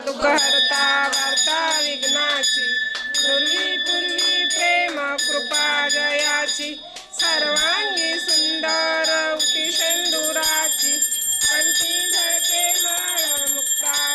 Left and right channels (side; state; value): both; identical; correlation 1.00